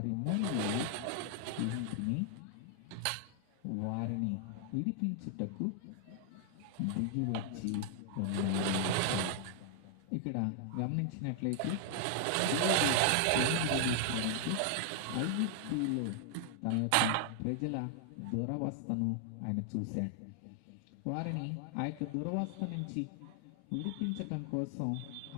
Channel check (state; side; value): different; both; correlation 0.00